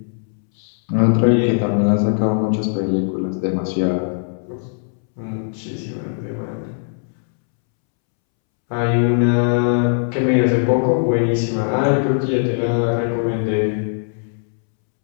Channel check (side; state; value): right; silent; 66 dB below the other